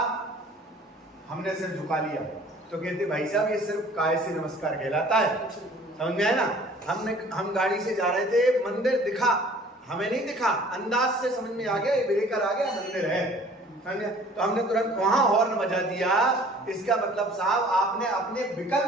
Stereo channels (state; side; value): normal; both; correlation 0.51